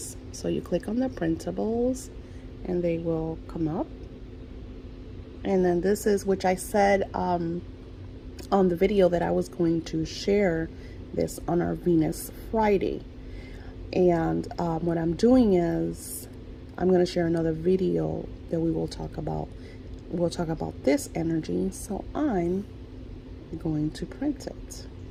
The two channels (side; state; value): both; identical; correlation 1.00